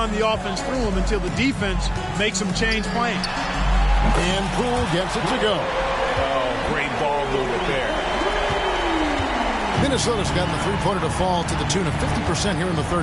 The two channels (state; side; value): identical; both; correlation 1.00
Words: the offense through him until the defense makes him change plans. And Poole gets it to go. Oh, great ball movement there. Minnesota's gotten the three-pointer to fall to the tune of 50% here in the